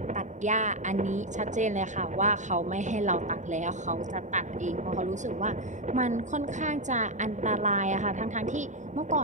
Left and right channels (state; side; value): late; left; 0.35 ms